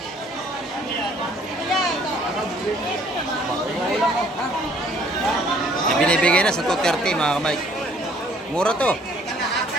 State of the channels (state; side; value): normal; both; correlation 0.60